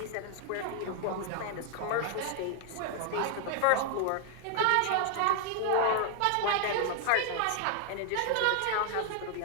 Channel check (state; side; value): different; both; correlation 0.00